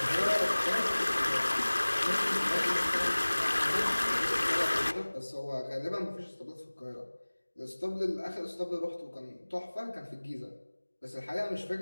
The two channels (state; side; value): inverted; both; correlation -1.00